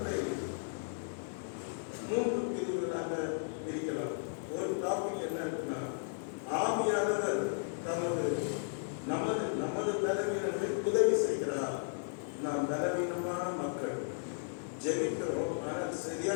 3 பிரிவுகளாக பிரிக்கலாம். ஒரு டாபிக் என்ன இருக்குன்னா, ஆவியானவர் நமது பலவீனங்களை உதவி செய்கிறார். நாம் பலவீனமான மக்கள், ஜெபிக்கிறோம், ஆனால்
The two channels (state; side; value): silent; right; digital silence